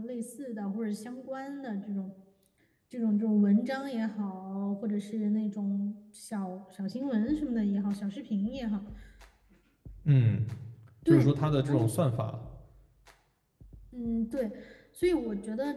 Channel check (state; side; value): identical; both; correlation 1.00